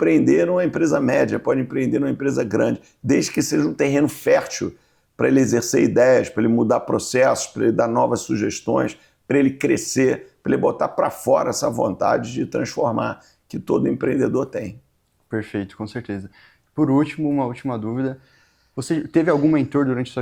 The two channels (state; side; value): identical; both; correlation 1.00